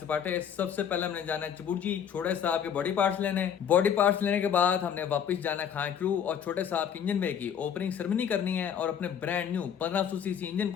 सबसे पहले हमने जाना है चबुर्जी छोटे साहब के बॉडी पार्ट्स लेने। बॉडी पार्ट्स लेने के बाद हमने वापस जाना है खान क्रू और छोटे साहब के इंजन में की ओपनिंग सेरेमनी करनी है और अपने ब्रांड न्यू 1500 सीसी इंजन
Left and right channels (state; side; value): quieter; right; 8.4 dB